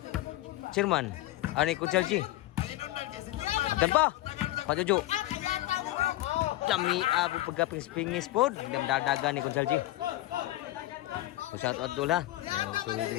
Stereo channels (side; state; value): right; quieter; 16.4 dB